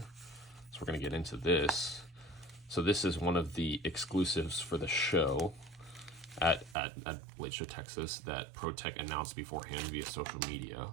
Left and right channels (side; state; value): left; drops out; at 6.8 s